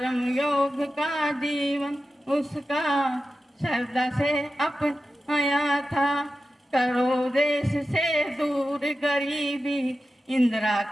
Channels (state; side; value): normal; both; correlation 0.92